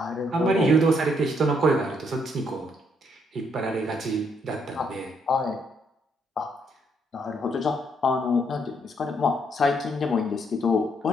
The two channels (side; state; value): both; normal; correlation 0.72